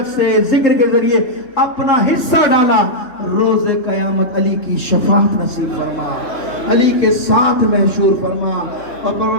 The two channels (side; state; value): right; late; 3.3 ms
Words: سے، ذکر کے ذریعے اپنا حصہ ڈالا، روز قیامت علی کی شفاعت نصیب فرما، علی کے ساتھ محشور فرما۔ اور